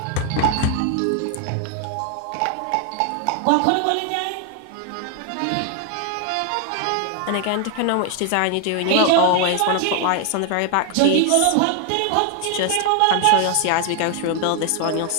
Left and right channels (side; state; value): both; different; correlation 0.00